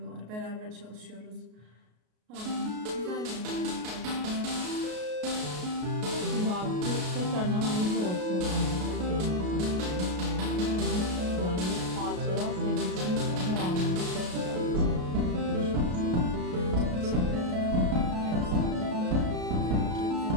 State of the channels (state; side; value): late; left; 33 ms